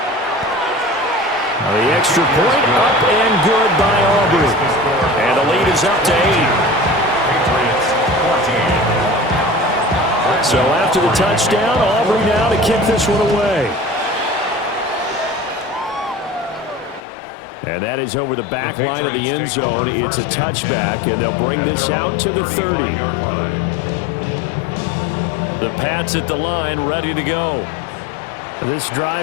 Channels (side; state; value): right; drops out; at 17.0 s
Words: The extra point up and good by Aubrey. And the lead is up to 8. So after the touchdown, Aubrey now to kick this one away. And that is over the back line of the end zone. It's a touchback, and they'll bring this out to the 30. The Pats at the line, ready to go. This